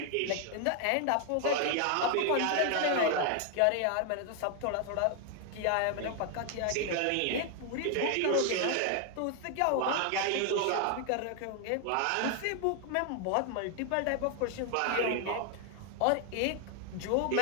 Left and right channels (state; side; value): different; both; correlation 0.00